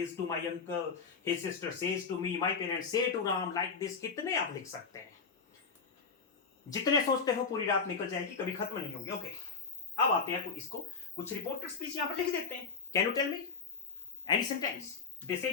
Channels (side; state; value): right; quieter; 5.2 dB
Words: to my uncle, his sister says to me, my parents say to Ram, like this. कितने आप लिख सकते हैं? जितने सोचते हो पूरी रात निकल जाएगी, कभी खत्म नहीं होगी। ओके, अब आते हैं इसको, कुछ रिपोर्टेड स्पीच यहां पर लिख देते हैं। Can you tell me any sentence? They say